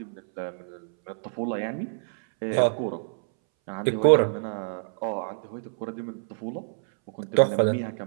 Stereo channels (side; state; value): left; silent; 60 dB below the other